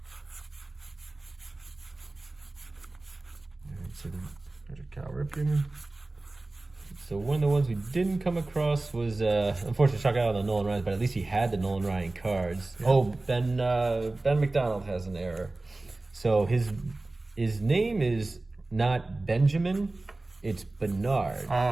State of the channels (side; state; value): left; quieter; 3.0 dB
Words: So, There's a Cal Ripken. so one of the ones we didn't come across was, unfortunately, Chuck out on the Nolan Ryan, but at least he had the Nolan Ryan cards. Yeah. Oh, Ben Mcdonald has an error. So his name is not Benjamin, it's Bernard.